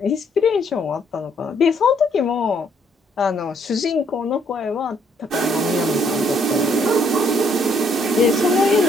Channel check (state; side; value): normal; both; correlation 0.69